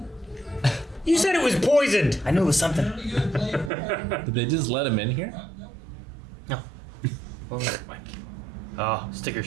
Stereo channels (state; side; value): drops out; left; at 3.7 s